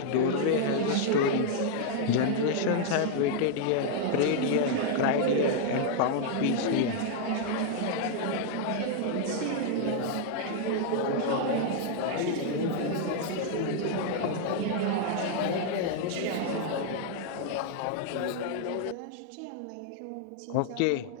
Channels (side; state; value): both; different; correlation 0.00